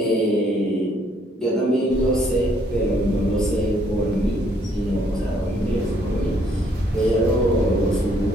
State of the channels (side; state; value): both; normal; correlation 0.67